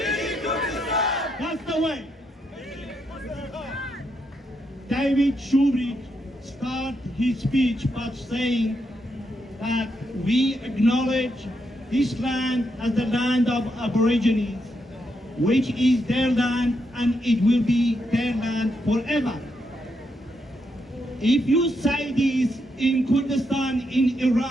That's the way. David Shoebridge started his speech by saying that we acknowledge this land as the land of Aborigines, which is their land and it will be their land forever. If you say this in Kurdistan in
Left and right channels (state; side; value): normal; both; correlation 0.81